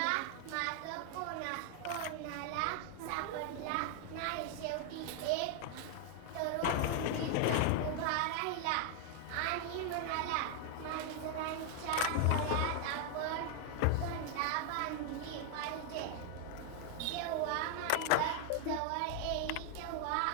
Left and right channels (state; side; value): different; both; correlation 0.00